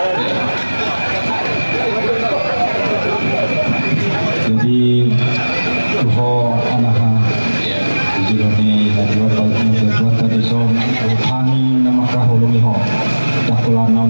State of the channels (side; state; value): both; inverted; correlation -1.00